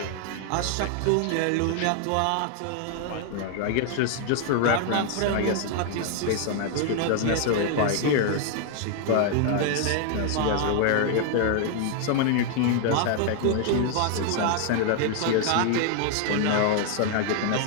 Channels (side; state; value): both; different; correlation 0.00